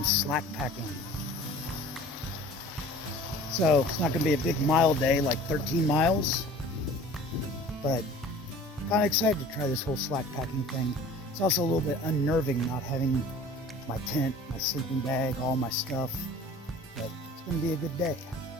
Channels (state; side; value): normal; both; correlation 0.45